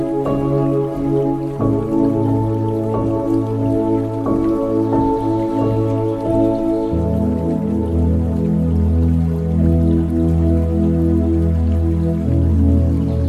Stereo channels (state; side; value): identical; both; correlation 1.00